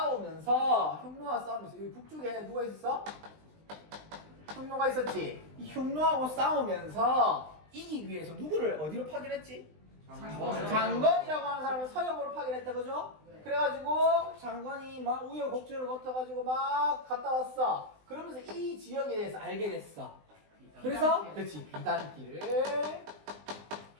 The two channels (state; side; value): late; left; 20 ms